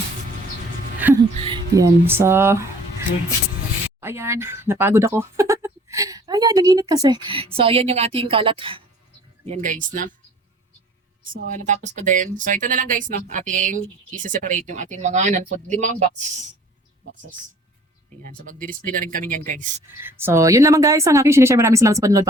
Yan. So, ayan. Napagod ako. Ayan, naginit kasi. So, ayan yung ating kalat. Yan, guys, na. So, natapos ko din. So, ito na lang, guys, no. Ating isa-separate yung ating mga non-food. 5 boxes. Ayan. So, magdi-display na rin kami yan, guys. So, yun naman, guys. Ang aking sinishare. Maraming salamat sa panonood.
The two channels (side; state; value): both; normal; correlation 0.51